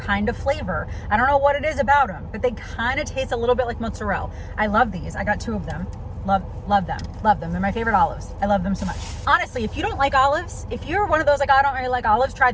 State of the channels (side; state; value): both; identical; correlation 1.00